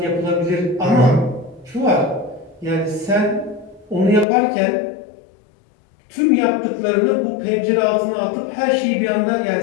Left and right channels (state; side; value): drops out; right; at 4.2 s